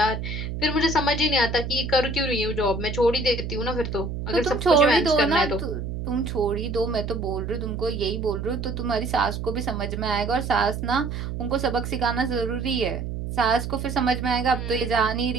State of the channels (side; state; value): right; noise; hum, 5 dB below the sound